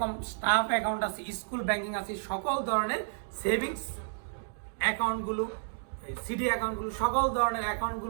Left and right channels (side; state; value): left; silent; digital silence